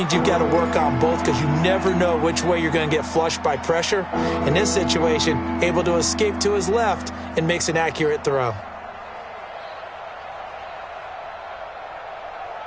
you've got to work on both because you never know which way you're going to get flushed by pressure. In this situation, able to escape to his left and makes an accurate throw.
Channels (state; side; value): identical; both; correlation 1.00